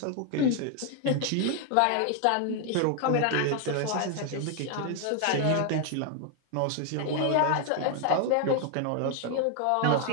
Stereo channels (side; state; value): both; different; correlation 0.00